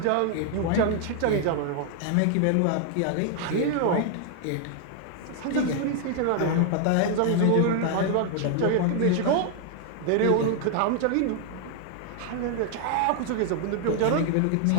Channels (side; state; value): both; different; correlation 0.00